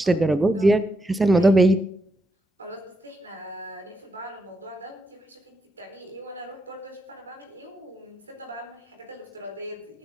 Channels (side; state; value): both; normal; correlation 0.83